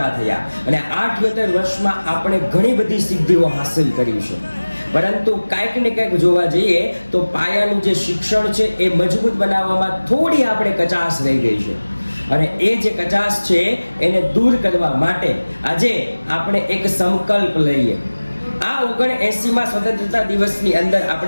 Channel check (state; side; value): inverted; both; correlation -1.00